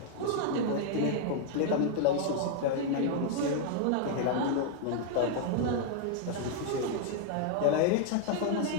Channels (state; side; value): different; both; correlation 0.00